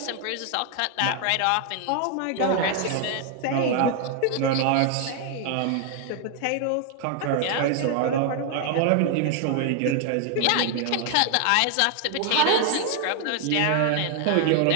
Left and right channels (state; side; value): different; both; correlation 0.00